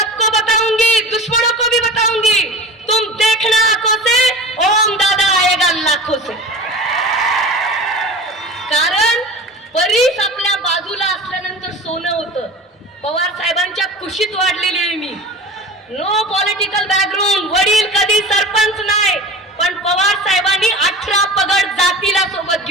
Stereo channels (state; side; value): normal; both; correlation 0.35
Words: बताऊंगी, दुश्मनों को भी बताऊंगी. तुम देखना आंखों से, ओम दादा आएगा लाखों से. कारण बरीच आपल्या बाजूला असल्यानंतर सोनं होतं. पवार साहेबांच्या कुशीत वाढलेली आहे मी. नो पॉलिटिकल बॅकग्राऊंड, वडील कधी सरपंच नाही, पण पवार साहेबांनी 18 पगड जातीला सोबत